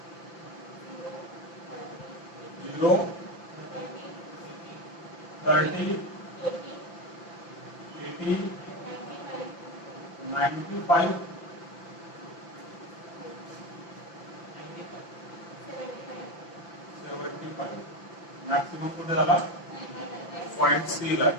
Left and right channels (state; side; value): late; right; 5.8 ms